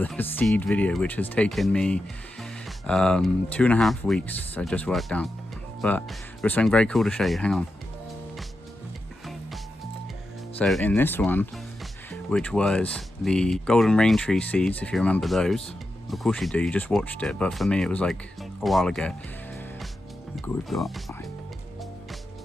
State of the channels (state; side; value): normal; both; correlation 0.89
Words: seed video, which has taken me 2.5 weeks, I just worked out. But there's something very cool to show you, hang on. So in this one, which was the golden rain tree seeds, if you remember those, of course you do, you just watched it, but for me it was like a while ago. Look what we've got.